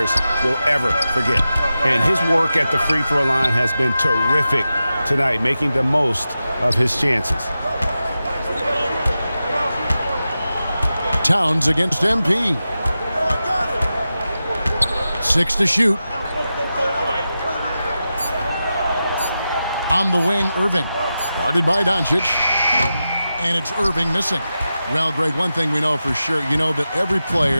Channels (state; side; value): inverted; both; correlation -0.92